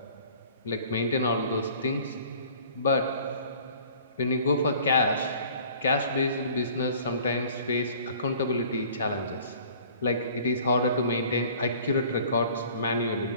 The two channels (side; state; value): both; inverted; correlation -0.50